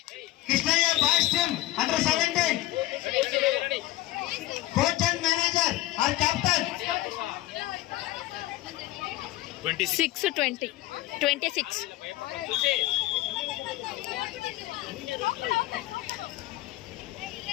Krishnaiah boys team under 17 coach and manager are captain 6-20 26. Tulasi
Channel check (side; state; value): right; quieter; 16.9 dB